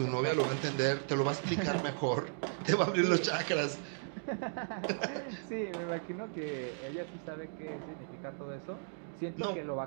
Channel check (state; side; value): silent; left; digital silence